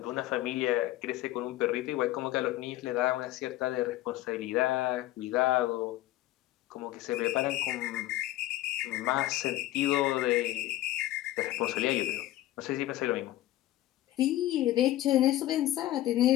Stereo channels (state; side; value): quieter; right; 15.1 dB